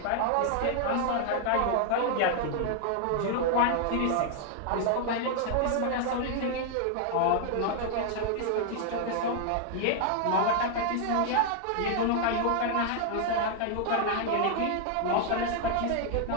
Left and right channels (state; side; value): different; both; correlation 0.00